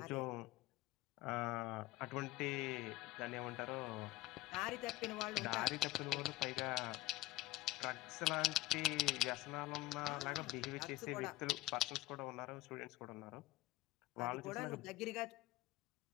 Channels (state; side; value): quieter; right; 18.4 dB